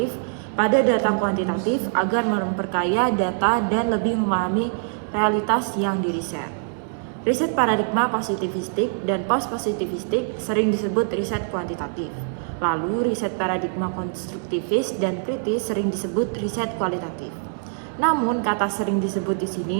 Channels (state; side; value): silent; left; 63 dB below the other